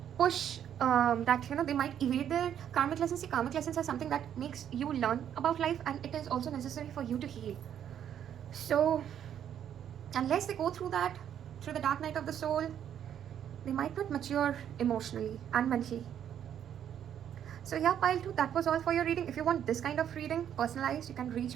push they might evade their karmic lessons. See, karmic lessons are something that makes you learn about life, and it is also necessary for you to heal. So unless they go through that, through the dark night of the soul, they might not mature emotionally and mentally. So yeah, pile 2, that was all for your reading. If you want this kind of reading, personalized, you can reach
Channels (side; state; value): left; quieter; 9.6 dB